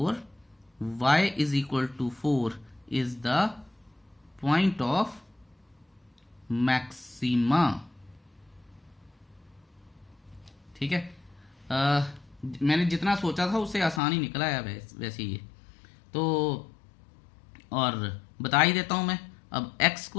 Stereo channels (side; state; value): right; drops out; at 14.0 s